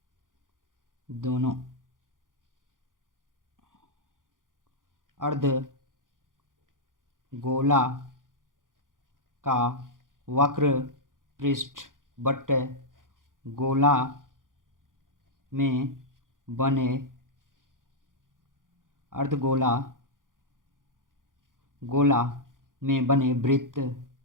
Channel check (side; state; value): left; late; 0.89 ms